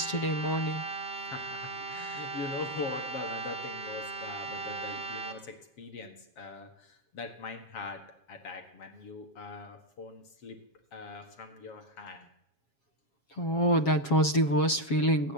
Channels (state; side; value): late; right; 7.3 ms